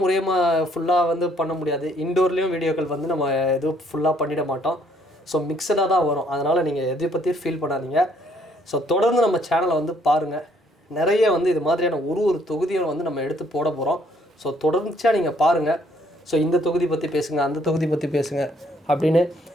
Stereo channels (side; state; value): both; normal; correlation 0.65